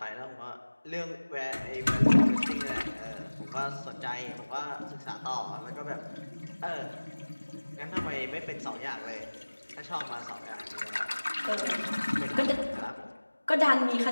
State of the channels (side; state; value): both; inverted; correlation -1.00